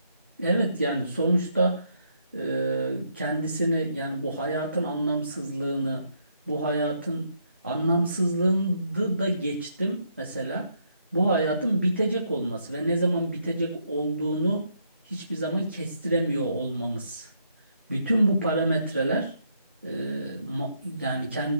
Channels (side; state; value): both; inverted; correlation -0.74